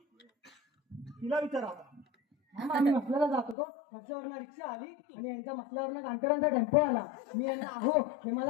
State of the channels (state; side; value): drops out; right; at 3.6 s